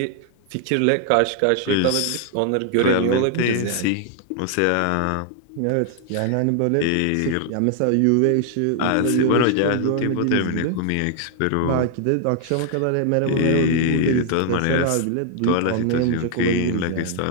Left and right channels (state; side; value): different; both; correlation 0.00